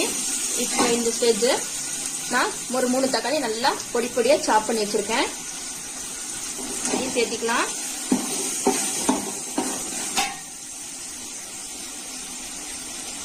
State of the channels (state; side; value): identical; both; correlation 1.00